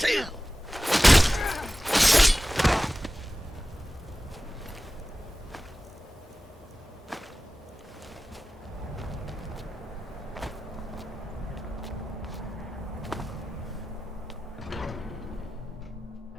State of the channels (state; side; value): normal; both; correlation 0.96